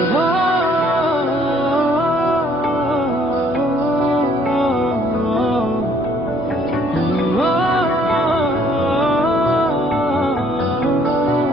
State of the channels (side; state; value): both; normal; correlation 0.62